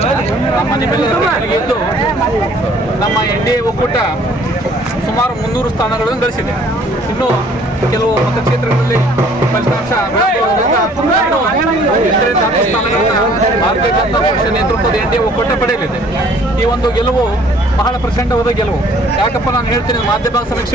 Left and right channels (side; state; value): both; normal; correlation 0.57